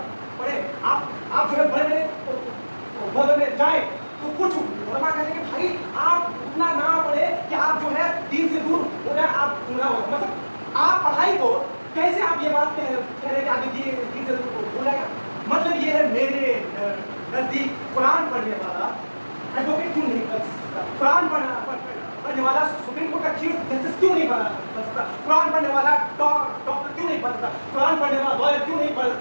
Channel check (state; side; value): inverted; both; correlation -1.00